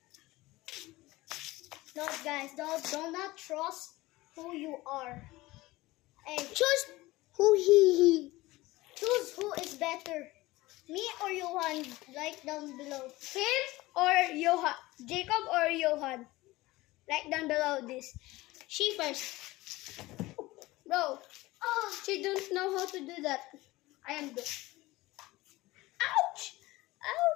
No, guys, do not trust who you are. Hey, Choose who he. choose who is better. Me or Johan? Write down below. Him or Johan? Jacob or Johan? Write down below this. She first. Bro, she don't know how to do that. I am good. Ouch!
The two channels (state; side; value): quieter; right; 19.4 dB